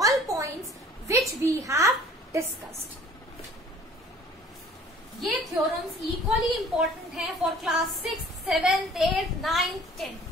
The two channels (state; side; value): normal; both; correlation 0.52